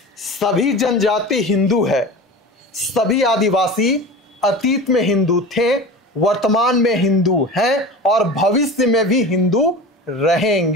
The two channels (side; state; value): both; normal; correlation 0.32